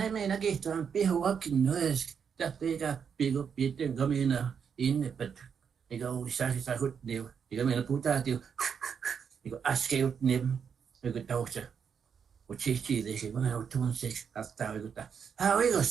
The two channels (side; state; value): left; quieter; 7.0 dB